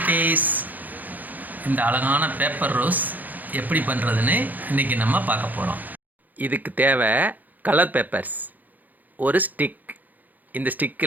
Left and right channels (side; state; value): left; late; 0.083 ms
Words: இந்த அழகான பேப்பர் ரோஸ் எப்படி பண்ணுறதுன்னு இன்றைக்கி நம்ம பார்க்க போகிறோம். இதுக்கு தேவை கலர் பேப்பர்ஸ், ஒரு ஸ்டிக். இந்த